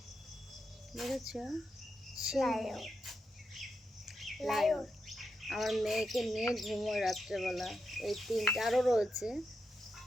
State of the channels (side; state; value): both; normal; correlation 0.85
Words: দেখেছো? লায়ন। লায়ন আমার মেয়েকে নিয়ে ঘুমোয় রাত্রেবেলা। এই তিনটা আরও রয়েছে,